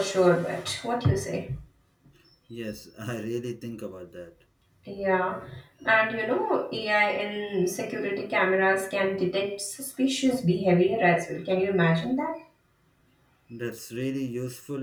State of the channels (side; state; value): both; identical; correlation 1.00